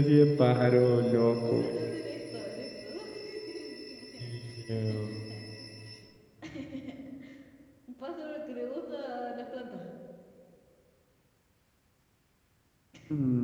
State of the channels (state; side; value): identical; both; correlation 1.00